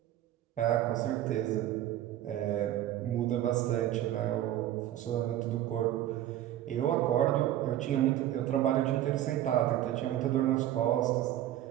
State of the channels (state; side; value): quieter; left; 12.8 dB